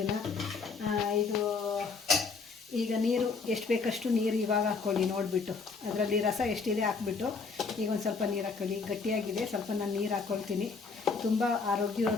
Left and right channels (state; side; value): quieter; right; 4.7 dB